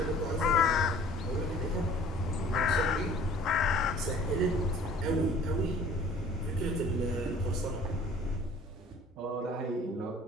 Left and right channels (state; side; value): normal; both; correlation 0.50